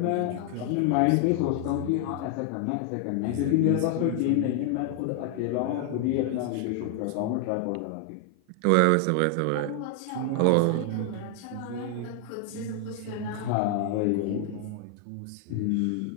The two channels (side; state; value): both; different; correlation 0.00